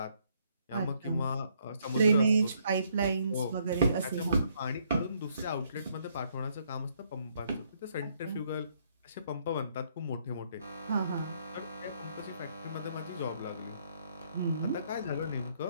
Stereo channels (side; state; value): both; inverted; correlation -0.70